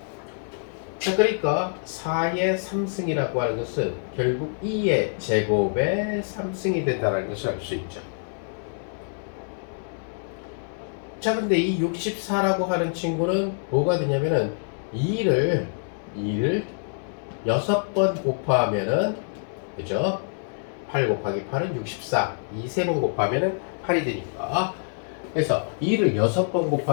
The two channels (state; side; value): silent; right; digital silence